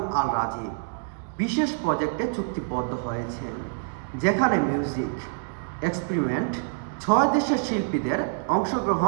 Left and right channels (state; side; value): silent; left; digital silence